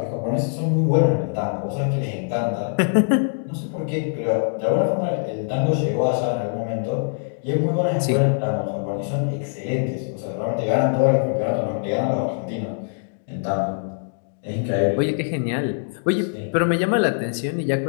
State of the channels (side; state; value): right; silent; digital silence